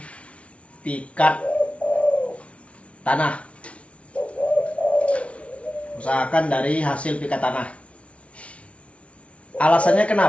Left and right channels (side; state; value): right; late; 0.062 ms